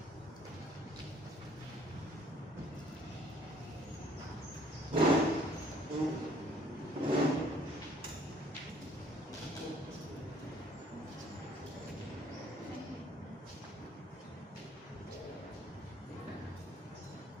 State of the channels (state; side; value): normal; both; correlation 0.59